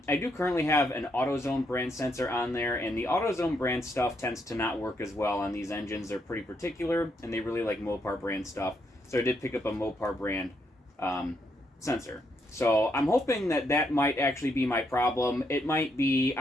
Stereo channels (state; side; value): normal; both; correlation 0.76